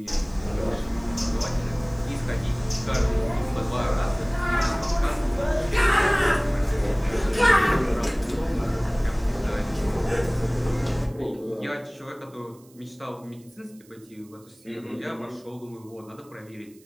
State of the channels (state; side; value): noise; right; hiss, 28 dB below the sound